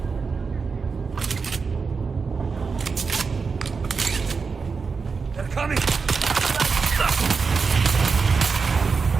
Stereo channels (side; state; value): left; quieter; 5.0 dB